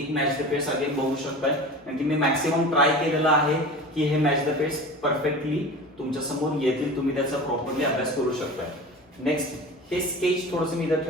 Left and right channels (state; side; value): normal; both; correlation 0.35